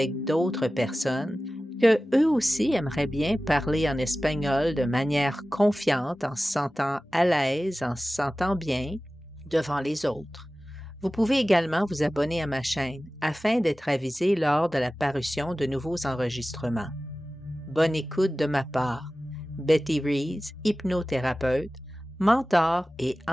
d'autres personnes que eux aussi aimeraient bien parler en espagnol de manière confiante, en se sentant à l'aise, en se sentant bien devant les autres. Vous pouvez également vous abonner à ma chaîne afin d'être avisé lors de la parution de nouveaux enregistrements. Bonne écoute de ma part. Betty Rees, hypnothérapeute, mentor et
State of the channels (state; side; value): normal; both; correlation 0.96